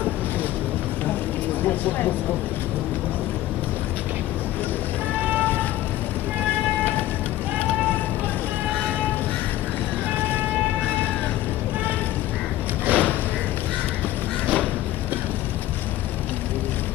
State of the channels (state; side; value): quieter; right; 14.6 dB